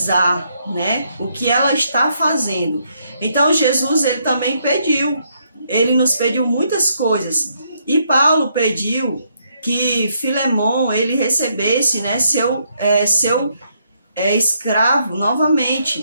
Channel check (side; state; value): both; inverted; correlation -0.74